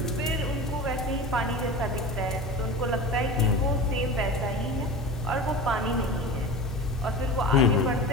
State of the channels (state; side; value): normal; both; correlation 0.31